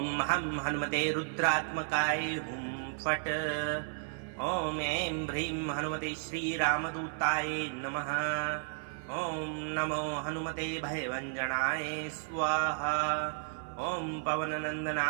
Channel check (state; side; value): silent; left; 56 dB below the other